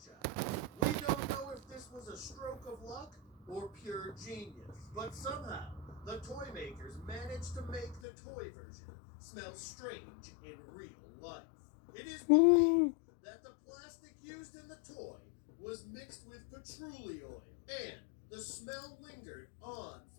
We don't know if this was a stroke of luck or pure genius, but somehow the toy makers managed to make the toy version smell strange in real life. It is believed that the plastic used in the toy was mixed with patchouli oil, and the smell lingered on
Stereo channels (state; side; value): drops out; right; at 8.0 s